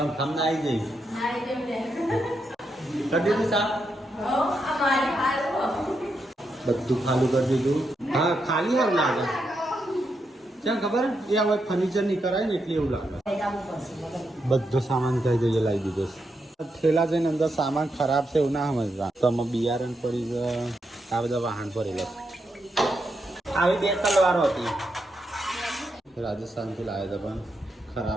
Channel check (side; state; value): both; normal; correlation 0.83